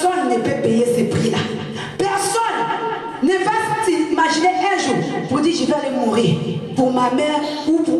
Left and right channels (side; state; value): both; identical; correlation 1.00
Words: ne peut payer ce prix-là. Personne ne va s'imaginer un jour pour dire je vais aller mourir pour ma mère ou